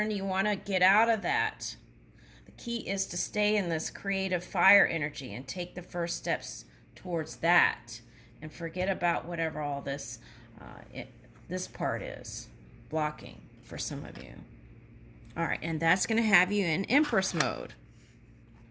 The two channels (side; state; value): both; identical; correlation 1.00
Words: You want to get out of that. The key is to stay in this creative fire energy and take the first steps towards that, and forget about whatever all this this part is blocking for some of you. All right, and that's going to have you in Empress mode.